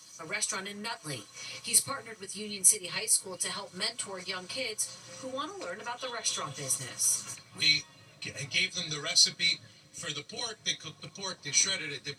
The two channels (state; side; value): identical; both; correlation 1.00